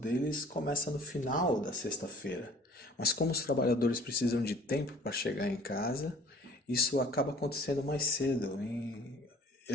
começa no final da sexta-feira. Mas como os trabalhadores precisam de tempo para chegar em casa, isso acaba acontecendo mais cedo.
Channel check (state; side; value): normal; both; correlation 0.51